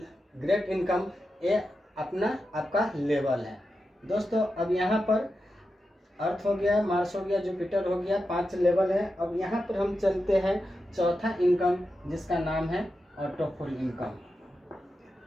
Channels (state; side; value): normal; both; correlation 0.89